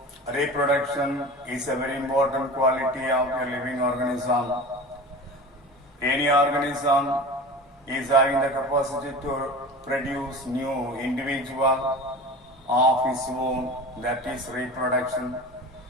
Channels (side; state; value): both; normal; correlation 0.35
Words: reproduction is a very important quality of a living organism. Any organism is having the capacity to produce new individual of its own, that is reproduction.